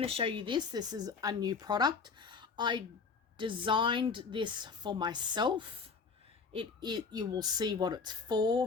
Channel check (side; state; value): right; quieter; 5.1 dB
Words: to show you this. This is a new product. I designed this for myself. You will see what it's